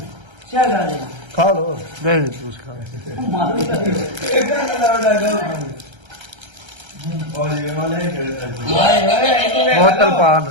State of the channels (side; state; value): left; late; 1.3 ms